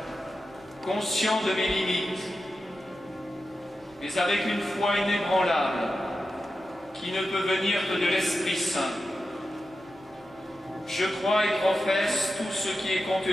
conscient de mes limites, mais avec une foi inébranlable qui ne peut venir que de l'Esprit Saint, je crois et professe tout ce qui est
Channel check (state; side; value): normal; both; correlation 0.91